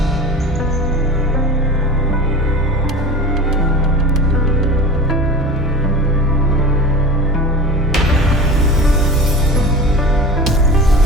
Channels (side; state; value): both; normal; correlation 0.34